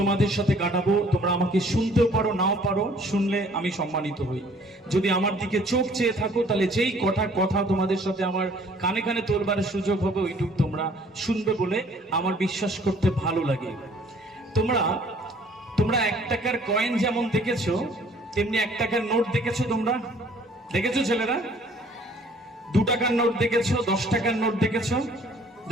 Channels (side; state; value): both; normal; correlation 0.57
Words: সাথে কাটাবো। তোমরা আমাকে শুনতেও পারো, নাও পারো। শুনলে আমি সম্মানিত হই। যদি আমার দিকে চোখ চেয়ে থাকো, তাহলে যেই কথা তোমাদের সাথে আমার কানে কানে তোলবার সুযোগ হবে, ওইটুক তোমরা শুনবে বলে আমার বিশ্বাস করতে ভালো লাগে। তোমরা 1 টাকার কয়েন যেমন দেখেছো, তেমনি 1 টাকার নোট দেখেছো। তোমরা দেখেছো ছেলেরা? 2 টাকার নোট দেখেছো, 10 টাকার নোট